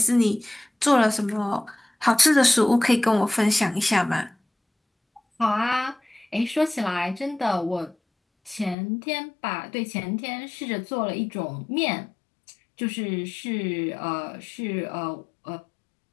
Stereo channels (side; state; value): right; drops out; at 8.8 s